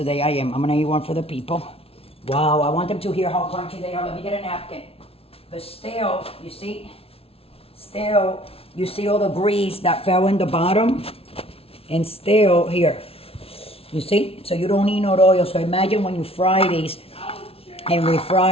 I am. I'm gonna eat one for the people. Wow, I want them to hear how crunchy they are. Let me get a napkin. But still, you see? Still, you see all the grease that fell in the bottom? And still, here. You see? So you don't need no oil. So imagine when you fry these and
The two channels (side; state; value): right; late; 0.28 ms